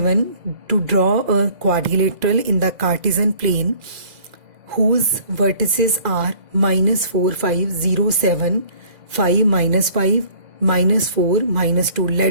to draw a quadrilateral in the Cartesian plane whose vertices are -4, 5, 0, 7, 5, -5, -4, -2.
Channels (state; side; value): late; left; 2.0 ms